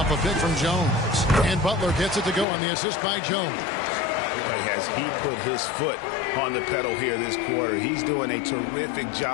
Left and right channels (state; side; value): drops out; right; at 2.5 s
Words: a pick from Jones. And Butler gets it to go on the assist by Jones. Boy, has he put his foot on the pedal here this quarter. He's doing a terrific